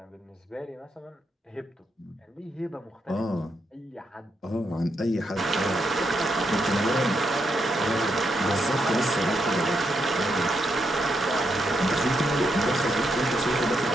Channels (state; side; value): normal; both; correlation 0.80